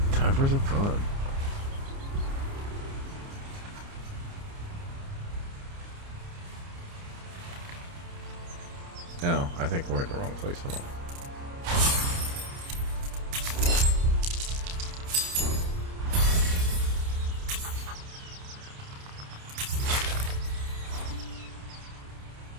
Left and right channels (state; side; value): late; left; 29 ms